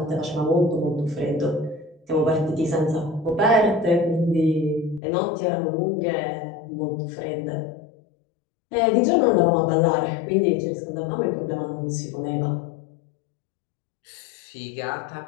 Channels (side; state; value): right; drops out; at 5.0 s